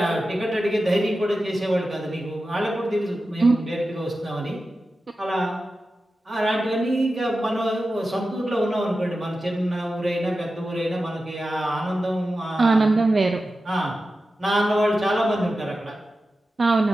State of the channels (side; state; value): both; normal; correlation 0.93